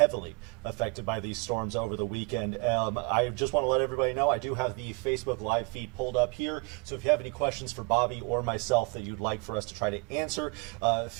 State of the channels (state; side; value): quieter; left; 32.4 dB